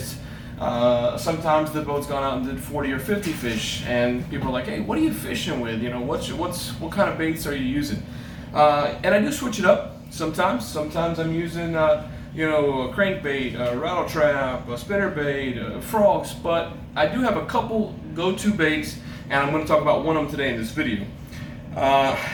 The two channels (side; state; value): both; identical; correlation 1.00